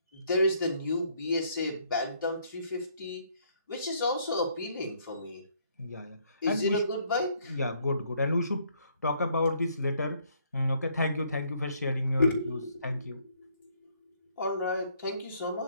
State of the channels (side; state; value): both; inverted; correlation -0.67